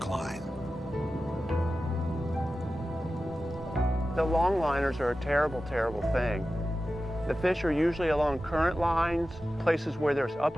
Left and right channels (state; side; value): normal; both; correlation 0.94